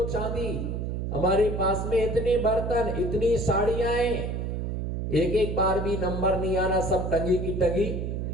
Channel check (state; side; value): noise; right; hum, 3 dB below the sound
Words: चांदी, हमारे पास में इतने बर्तन, इतनी साड़ियां, एक एक बार भी नंबर नहीं आना, सब टंगी की टंगी,